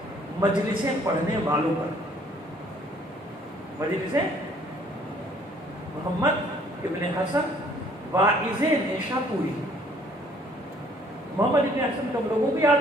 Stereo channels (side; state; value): both; normal; correlation 0.59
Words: مجلسیں پڑھنے والوں پر، مجلسیں محمد ابن حسن واعظ نیشاپوری۔ محمد ابن حسن کم لوگوں کو